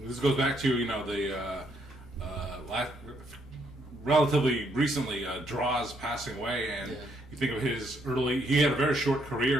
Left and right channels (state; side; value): noise; left; rumble, 23 dB below the sound